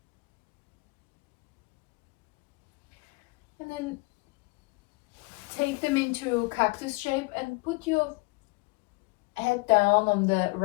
And then take them into cactus shape and put your head down on the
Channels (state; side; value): quieter; right; 26.6 dB